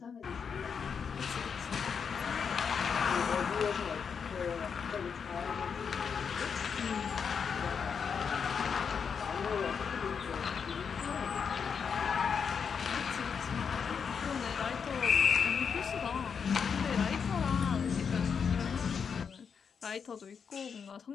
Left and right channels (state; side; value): quieter; right; 6.5 dB